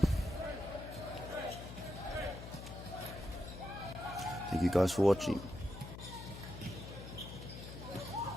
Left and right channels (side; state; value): left; noise; hum, 10 dB below the sound